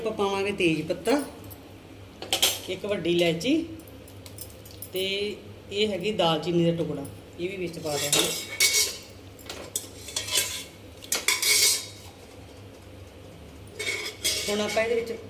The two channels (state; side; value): identical; both; correlation 1.00